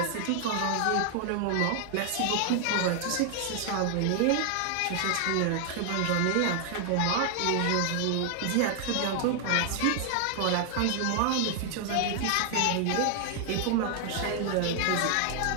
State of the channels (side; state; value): both; different; correlation 0.00